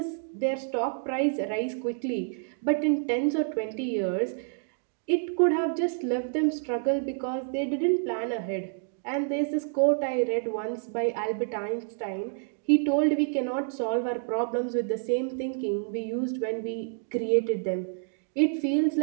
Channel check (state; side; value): silent; left; digital silence